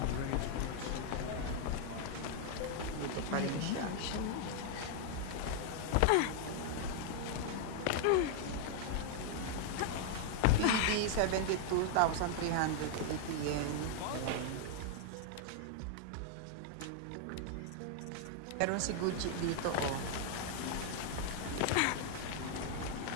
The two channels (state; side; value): different; both; correlation 0.00